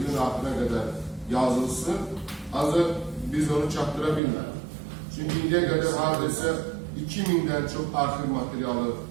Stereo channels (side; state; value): left; drops out; at 4.2 s